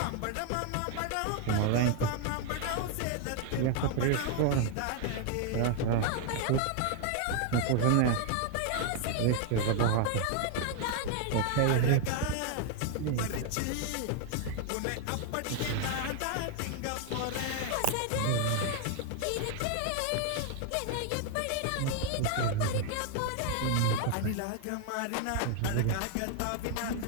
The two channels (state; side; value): different; both; correlation 0.00